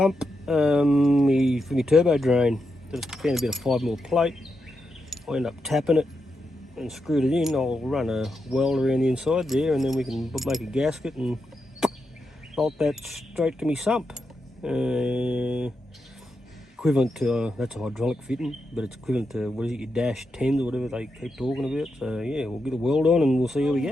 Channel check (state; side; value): normal; both; correlation 0.86